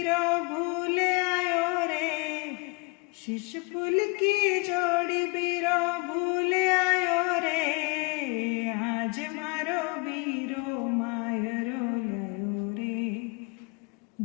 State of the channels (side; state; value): right; quieter; 30.0 dB